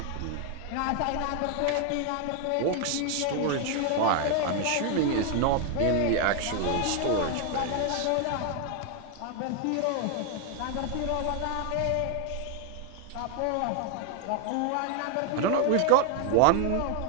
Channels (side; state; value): both; different; correlation 0.01